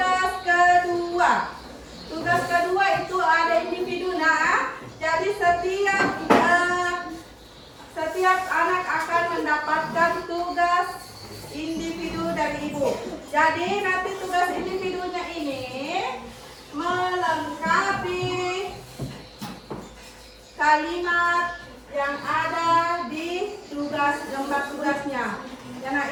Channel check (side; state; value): both; identical; correlation 1.00